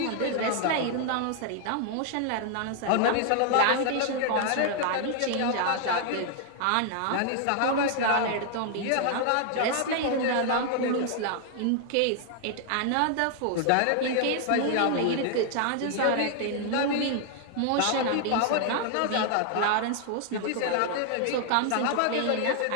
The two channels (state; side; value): different; both; correlation 0.00